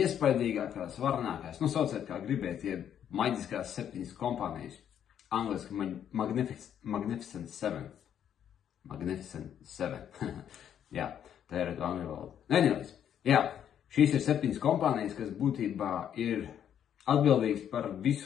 varenākās, sauciet kā gribiet, maģiskās 7 kompānijas. Angliski Magnificent 7. Magnificent 7. Jā, tā ir angļu valoda. Anyways, jā, šīs ir 7 kompānijas, kas būtībā ir atbildīgs par visu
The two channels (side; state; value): right; quieter; 9.4 dB